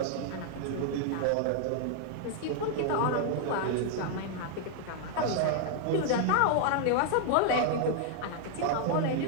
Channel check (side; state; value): both; different; correlation 0.00